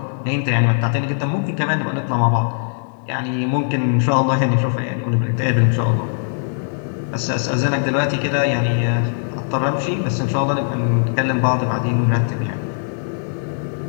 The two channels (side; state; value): right; silent; 62 dB below the other